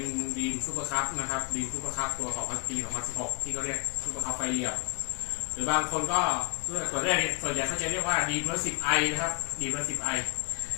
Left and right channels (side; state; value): right; quieter; 30.5 dB